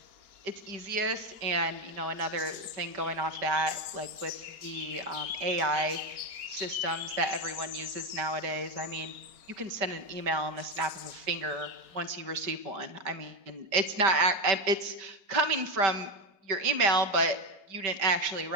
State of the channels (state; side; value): late; left; 4.4 ms